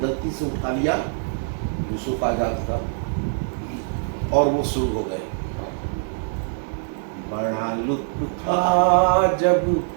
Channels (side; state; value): left; silent; 63 dB below the other